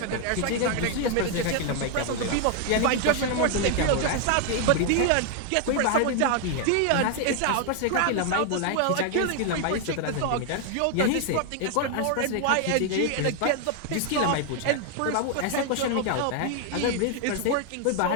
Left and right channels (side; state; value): both; different; correlation 0.00